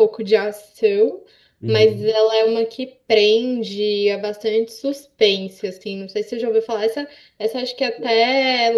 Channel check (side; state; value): both; identical; correlation 1.00